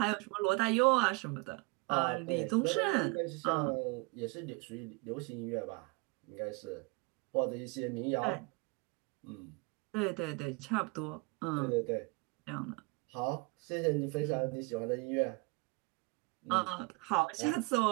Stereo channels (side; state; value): left; quieter; 27.0 dB